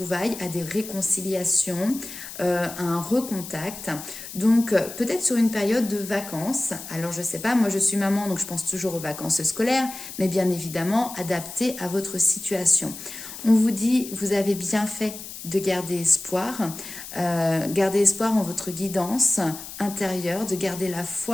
à des réconciliations, à un recontact. Donc peut-être sur une période de vacances. Alors je sais pas, moi je suis maman, donc je pense toujours aux vacances scolaires, mais bien évidemment adaptées à votre situation. On vous dit, vous avez bien fait de garder espoir en votre guidance intérieure, de garder la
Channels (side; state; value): left; noise; hiss, 12 dB below the sound